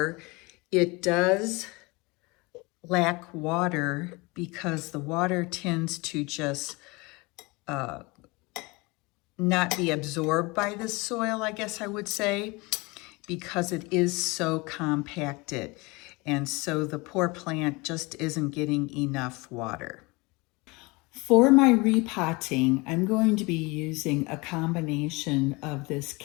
it does lack water because the water tends to just not be absorbed by the soil, I guess I would say, because it is so compacted. And so the poor plant just isn't getting enough water. For my repotting, I'm going to be using a combination of this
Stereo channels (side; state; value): right; quieter; 25.5 dB